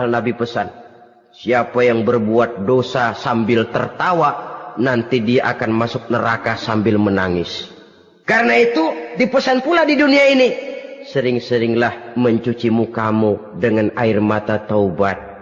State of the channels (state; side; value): identical; both; correlation 1.00